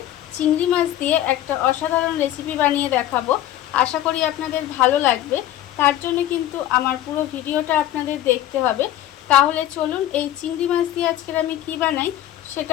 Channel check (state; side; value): quieter; right; 12.8 dB